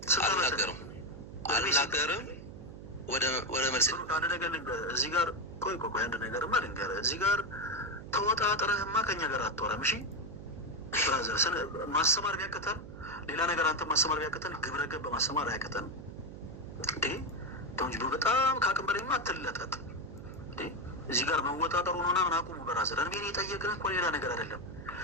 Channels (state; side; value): noise; right; hum, 13 dB below the sound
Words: አልናገርም። ወደ መልስ አንድ ነገር ልንገርህ። እዚህ ጋር ቆይ አንድ ነገርማ ልንገርህ። እዚህ ጋር ተወጣጥረህማ ከኛ ጋር አትወራም። እሺ ብራዘር፣ ማስተማር ቢያቅተን ሌላ ነገር አንተ ማስተማር ቢያቅተን ግብረ ገብ ማስተማር አያቅተንም እንዴ? ተውንጅ በጣም ከአቅም በላይማ አትለጠጥ እንዴ? እዚህ ጋር መወጣጠሩ ነውና ምን አቁሙ ብራዘር። እኔ የጠየቅን እኮ ሌላ ነገር አይደለም።